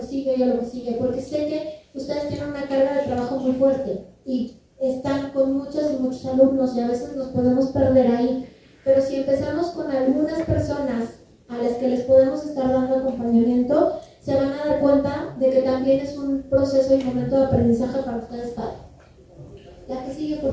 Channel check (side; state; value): both; identical; correlation 1.00